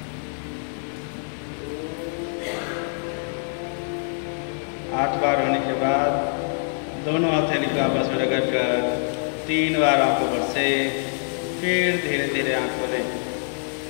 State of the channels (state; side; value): silent; right; digital silence